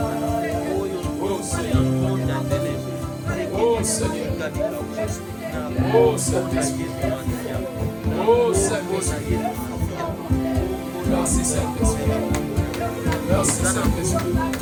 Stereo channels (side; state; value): both; identical; correlation 1.00